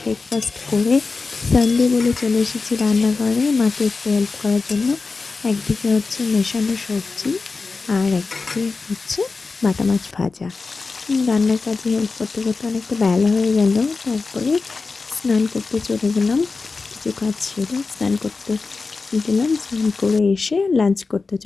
করে সানডে বলে চলে এসেছি রান্নাঘরে মাকে একটু হেল্প করার জন্য। একদিকে হচ্ছে মেশানো সবজি আর একদিকে হচ্ছে বাটা মাছ ভাজা। রান্নার কাজে হেল্প করতে করতে অনেকটা বেলা হয়ে গেল। তারপরে স্নান করতে চলে গেলাম। কিছু কাজ সেরে স্নান করতে গেলাম। স্নান করে এসে লাঞ্চ করতে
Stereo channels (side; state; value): right; quieter; 4.2 dB